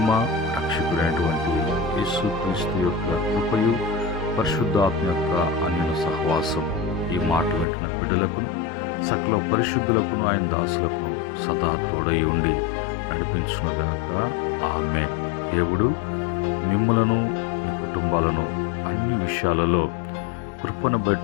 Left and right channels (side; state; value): right; drops out; at 7.7 s